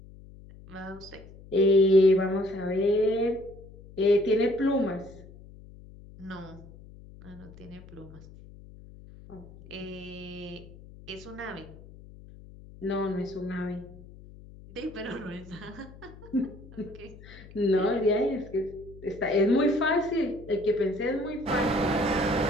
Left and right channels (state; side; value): noise; left; hum, 19 dB below the sound